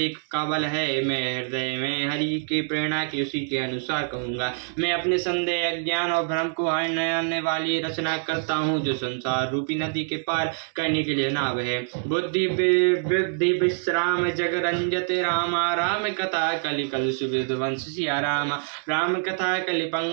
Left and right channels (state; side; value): silent; left; digital silence